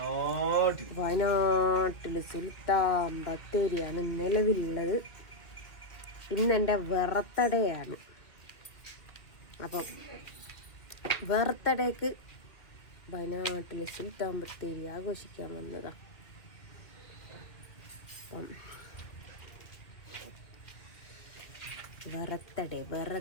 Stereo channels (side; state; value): right; late; 2.2 ms